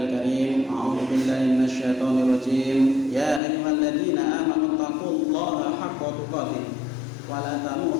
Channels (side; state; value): right; drops out; at 3.4 s